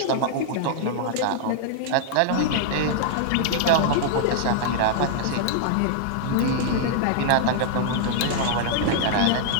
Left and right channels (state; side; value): different; both; correlation -0.01